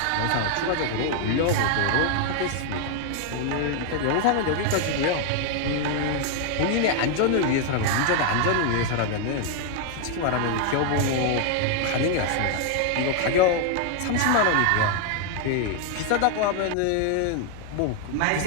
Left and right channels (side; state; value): both; different; correlation 0.00